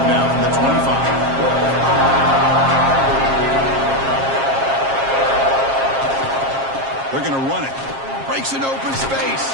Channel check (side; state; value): left; late; 7.4 ms